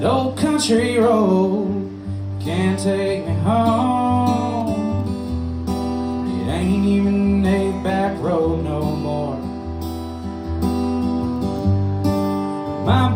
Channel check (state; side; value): identical; both; correlation 1.00